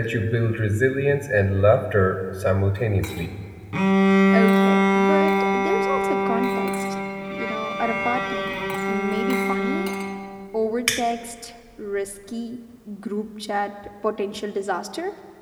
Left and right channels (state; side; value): identical; both; correlation 1.00